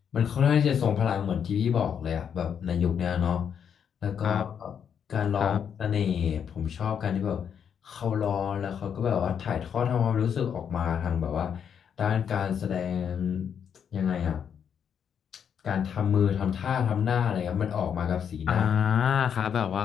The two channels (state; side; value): quieter; right; 7.9 dB